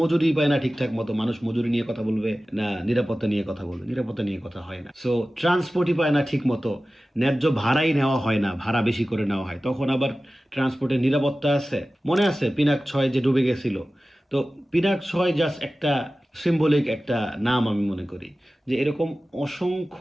মজুরি পায় না ঠিকঠাক মতো, মানুষ মজুরি নিয়ে কথা বলবে না নিরাপত্তা নিয়ে কথা বলবে, নিরাপত্তা নিয়ে কথা হয় না। সো ট্রান্সপোর্টই পায় না ঠিক মতো, ন্যায্য ভাড়াই নেওয়া হয় না, ভাড়া বেশি করে নেওয়া হয়, তখন আবার ট্রান্সপোর্টের নিরাপত্তা আছে। মনে আছে পিনাক 6 যে ডুবে গেছিল, তো পিনাক 6 জাস্ট একটা সিম্বলিক একটা নাম। আমি মনে করি যে এরকম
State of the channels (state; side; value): normal; both; correlation 0.96